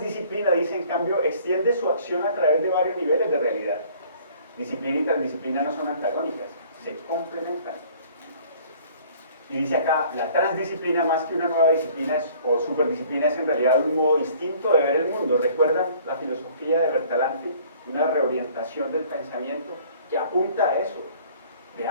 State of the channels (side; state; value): both; inverted; correlation -0.54